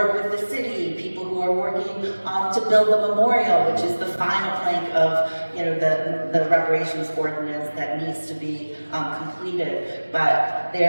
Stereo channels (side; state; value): both; inverted; correlation -1.00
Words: with the city, people who are working to build the memorial, which is the final plank of, you know, the reparations ordinance that needs to be completed. But